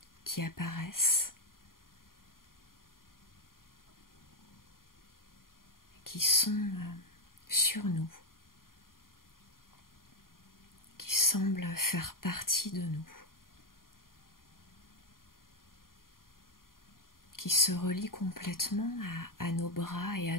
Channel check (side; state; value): right; late; 0.91 ms